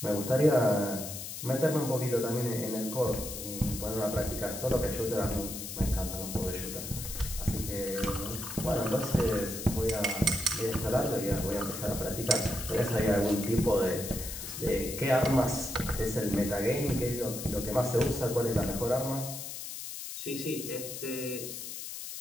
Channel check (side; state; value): left; noise; hiss, 8 dB below the sound